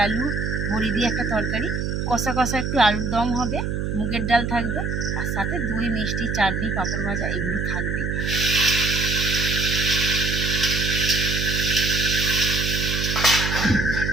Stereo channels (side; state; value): right; noise; hum, 1 dB below the sound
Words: আলু, বড়ি দিয়ে একটা তরকারি, কষা কষা একটু আলুর দম হবে, মুগের ডাল থাকবে, আর সাথে দই, মিষ্টি, চাটনি, পাঁপড় ভাজা এগুলো থাকবেই।